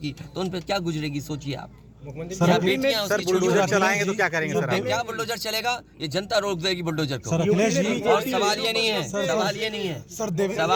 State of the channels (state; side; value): identical; both; correlation 1.00